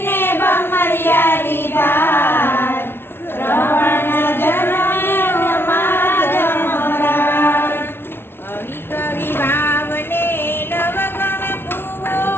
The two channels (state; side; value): late; right; 0.11 ms